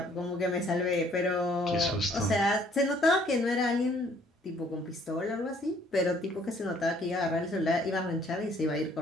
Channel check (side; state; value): both; normal; correlation 0.61